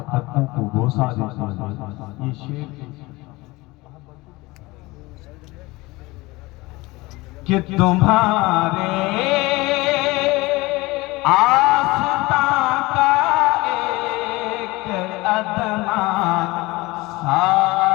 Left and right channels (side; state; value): right; quieter; 21.7 dB